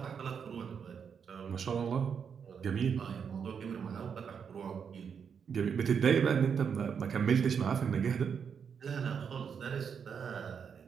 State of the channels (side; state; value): left; quieter; 6.9 dB